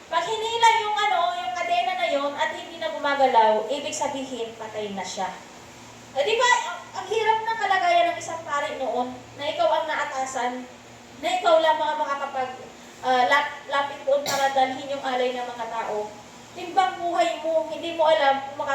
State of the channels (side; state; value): both; identical; correlation 1.00